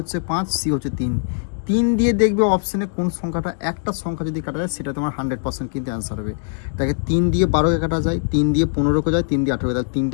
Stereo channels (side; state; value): right; silent; 65 dB below the other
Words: 5, সি হচ্ছে 3। 3 দিয়ে দেখবে অপশানে কোন সংখ্যাটা, একটা সংখ্যা যদি কাটা যায় সেটা তোমার 100% কিন্তু অ্যান্সার হবে। দেখে 3 দিয়ে 12কে কাটা যায়, 3 দিয়ে 15কে যায়, 3 দিয়ে 18কে যায়,